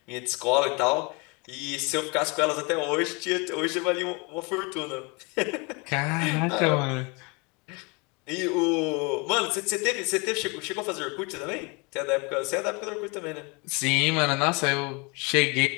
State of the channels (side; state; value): right; quieter; 29.6 dB